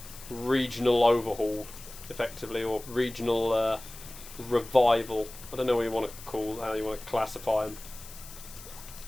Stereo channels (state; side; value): noise; left; hiss, 16 dB below the sound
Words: regional overhaul, effectively, or regional revival. I don't know what you want to call, how you want to classify them.